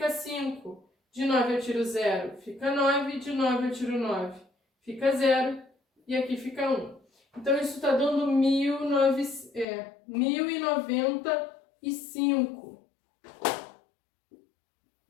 5. De 9 eu tiro 0, fica 9. De 9 eu tiro 9, fica 0. E aqui fica 1. Então, isso está dando 1095.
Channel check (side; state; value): right; drops out; at 9.7 s